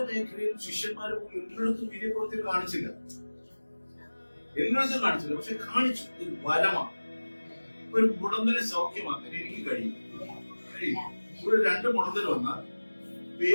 മേഖലയിലും ശിഷ്യന്മാരെ എല്ലായിടത്തും വീര്യപ്രവൃത്തികൾ കാണിച്ചില്ല, പക്ഷെ കാണിച്ചു. ഇത് വരമാണ്. ഒരു മുടന്തനെ സൗഖ്യമാക്കാൻ എനിക്ക് കഴിയും. ഇവിടെ 2 മുടന്തൽ വന്നാൽ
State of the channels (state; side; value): inverted; both; correlation -1.00